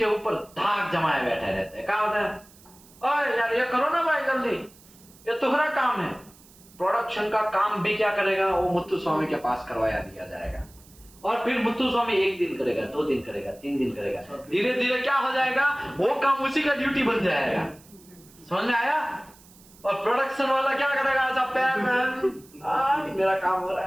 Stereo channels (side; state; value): right; noise; hiss, 25 dB below the sound